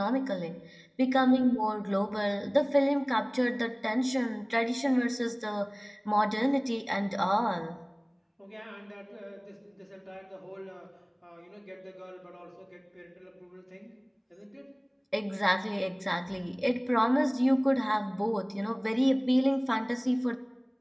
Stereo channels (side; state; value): both; identical; correlation 1.00